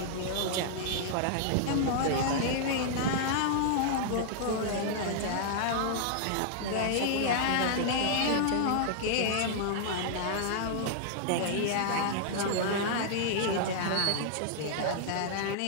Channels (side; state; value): both; different; correlation -0.01